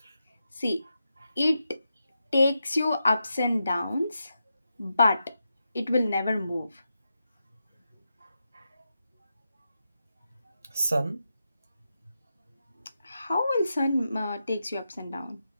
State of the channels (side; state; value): both; inverted; correlation -0.87